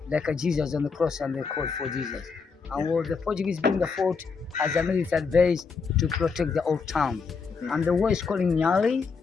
like a Jesus on the cross and they called for Jesus. And what the Portuguese built the fort as a military base to protect the old town. And the way is calling Nyali,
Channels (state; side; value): quieter; right; 5.1 dB